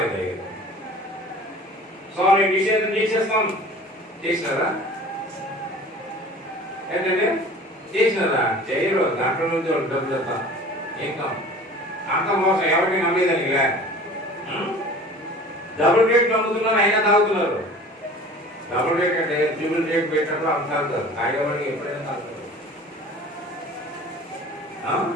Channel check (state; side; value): normal; both; correlation 0.43